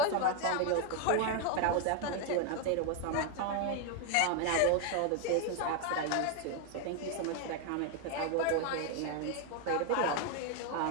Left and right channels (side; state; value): both; different; correlation 0.01